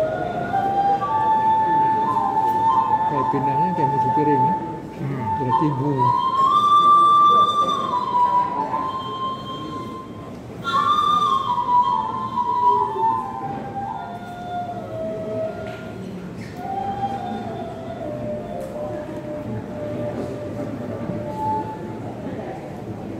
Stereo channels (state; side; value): identical; both; correlation 1.00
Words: pindahnya kayak musuh piring ya. Berarti ibu.